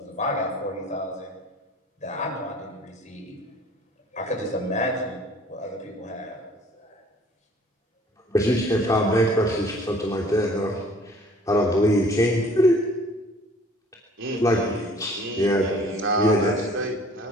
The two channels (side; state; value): both; normal; correlation 0.53